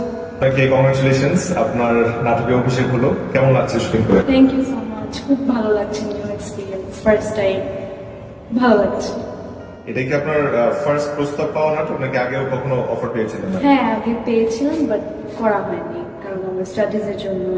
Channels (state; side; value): identical; both; correlation 1.00